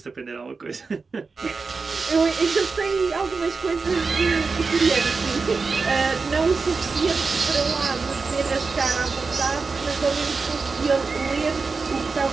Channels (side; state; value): left; quieter; 4.5 dB